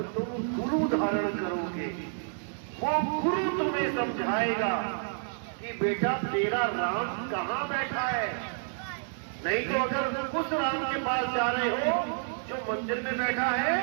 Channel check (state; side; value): silent; left; digital silence